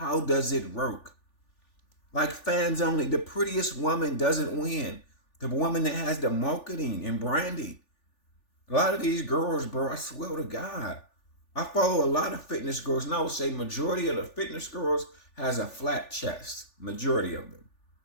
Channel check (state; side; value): late; right; 3.4 ms